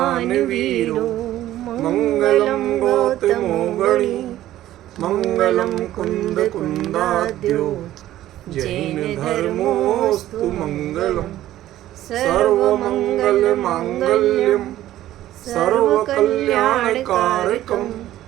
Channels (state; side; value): quieter; left; 13.8 dB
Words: वीरो मंगलम गौतमो गणी मंगलम कुंद कुंदाद्यो जैन धर्मोस्तु मंगलम सर्वमंगल मांगल्यम सर्वकल्याणकारकम